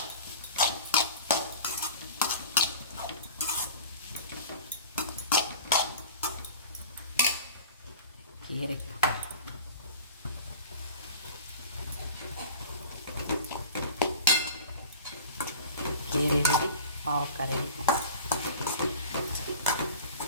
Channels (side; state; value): both; inverted; correlation -0.38